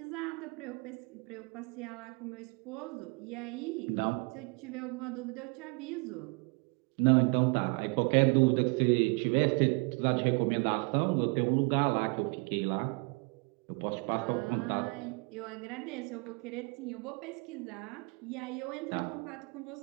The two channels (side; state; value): left; quieter; 29.8 dB